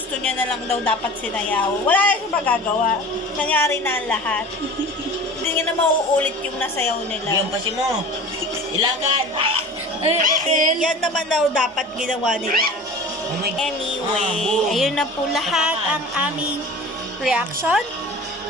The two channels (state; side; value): normal; both; correlation 0.39